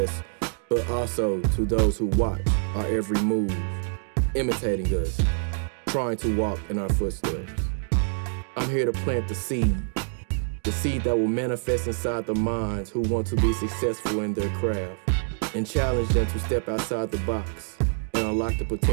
but also to those who watch our every move, imitating us, trying to walk in our footsteps. I'm here to plant the seed that will manifest inside the minds who want to be successful in their craft, and challenge them to step outside the box and unlock the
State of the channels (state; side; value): silent; left; 58 dB below the other